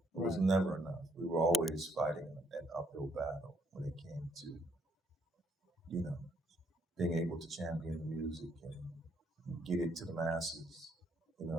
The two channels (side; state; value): both; normal; correlation 0.71